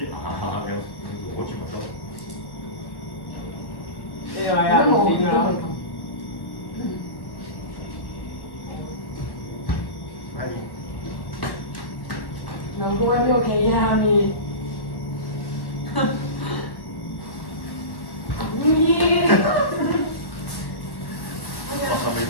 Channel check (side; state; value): right; late; 1.1 ms